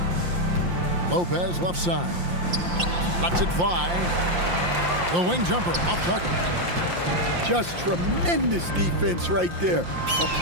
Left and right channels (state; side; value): late; left; 5.7 ms